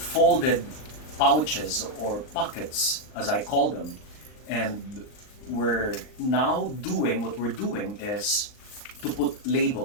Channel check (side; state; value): right; late; 39 ms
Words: pouches or pockets, as I call them, and we're now doing what we're doing is to put